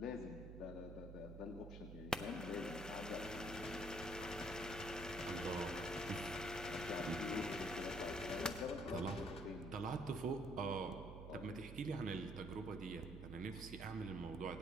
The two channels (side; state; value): right; noise; hum, 9 dB below the sound